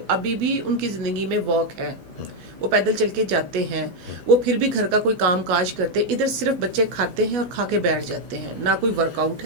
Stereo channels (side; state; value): left; late; 14 ms